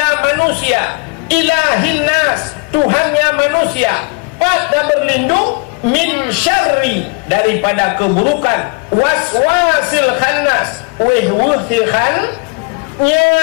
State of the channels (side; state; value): right; quieter; 30.9 dB